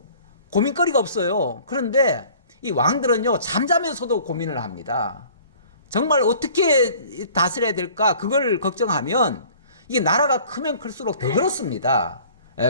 고민거리가 없어요. 그런데 이 왕들은요 잠자면서도 고민을 합니다. 정말 어떻게 다스려야 될까 그걸 걱정하면 이게 나라가 크면 클수록 더 그렇습니다.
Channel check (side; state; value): both; inverted; correlation -0.50